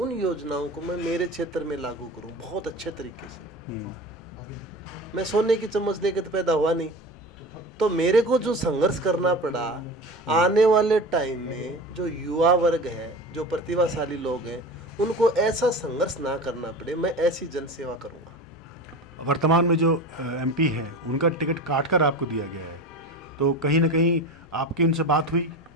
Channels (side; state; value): both; normal; correlation 0.31